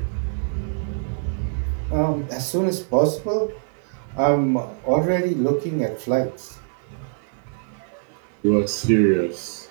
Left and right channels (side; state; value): left; silent; digital silence